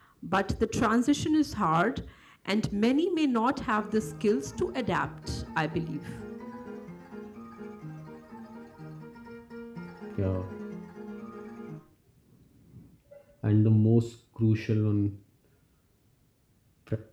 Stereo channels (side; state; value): both; identical; correlation 1.00